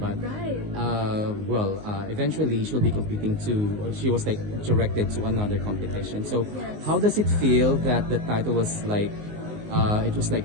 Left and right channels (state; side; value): late; left; 19 ms